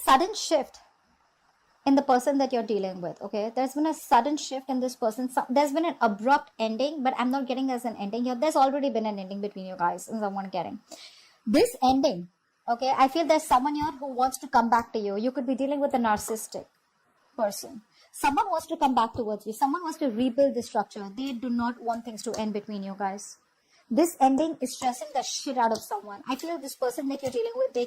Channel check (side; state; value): both; identical; correlation 1.00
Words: sudden shift in the person that you're dealing with, okay? There's been a sudden shift in this person. There's been an abrupt ending, but I'm not getting as an ending here. There's already been an ending between you guys, is what I'm getting. This ending, okay, I feel there's someone here who wants to come back to you. You could be dealing with a narcissistic person. Someone wants to come back towards you. Someone wants to rebuild the structure. They do not want things to end between you guys. This ending is stressing the shit out of someone. I feel this person that you're dealing with, they